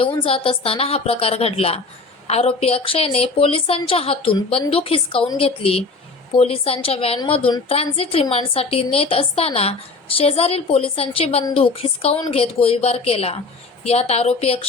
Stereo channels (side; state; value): right; quieter; 3.8 dB